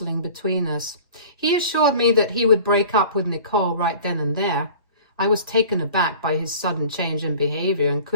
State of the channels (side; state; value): both; inverted; correlation -0.43